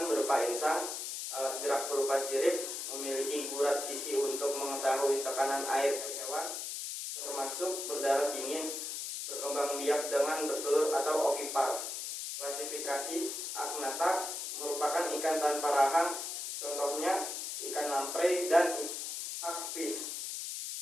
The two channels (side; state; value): left; noise; hiss, 5 dB below the sound